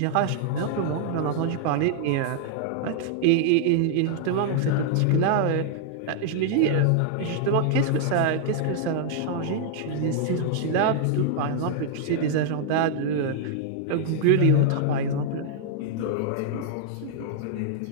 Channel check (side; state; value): both; different; correlation -0.01